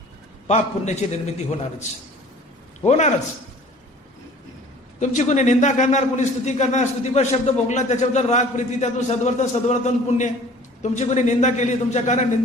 पाप पुण्याची निर्मिती होणारच. तुमची कोणी निंदा करणार, कोणी स्तुती करणार, स्तुतीपर शब्द भोगला, त्याच्याबद्दल राग प्रीती, त्यातून सद्वर्तन पुण्य. तुमची कोणी निंदा केली, तुमच्या कारण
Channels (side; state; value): both; normal; correlation 0.48